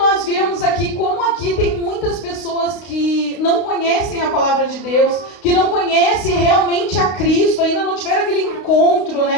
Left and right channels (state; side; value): late; right; 32 ms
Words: vemos aqui, como aqui tem muitas pessoas que não conhecem a palavra de Deus, que não conhecem realmente a Cristo, ainda não tiveram aquele encontro,